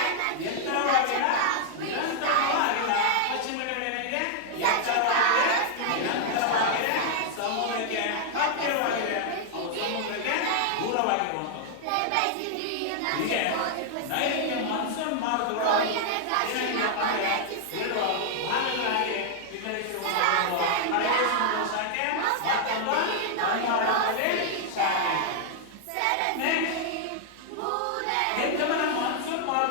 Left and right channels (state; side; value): different; both; correlation -0.01